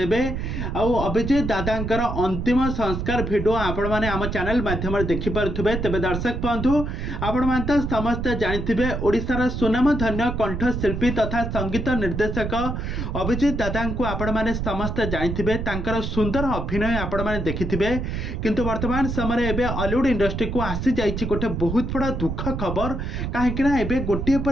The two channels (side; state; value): right; noise; rumble, 3 dB below the sound